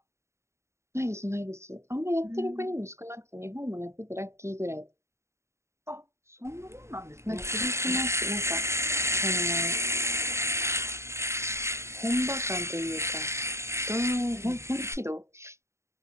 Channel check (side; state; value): left; late; 0.13 ms